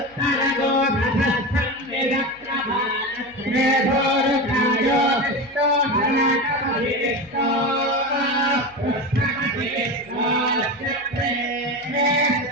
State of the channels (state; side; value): noise; left; hum, 29 dB below the sound